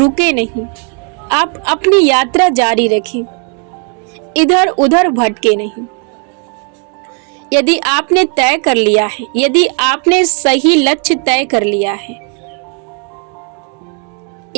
नहीं, आप अपनी यात्रा जारी रखें, इधर उधर भटके नहीं। यदि आपने तय कर लिया है, यदि आपने सही लक्ष्य तय कर लिया है,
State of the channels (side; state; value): left; quieter; 38.7 dB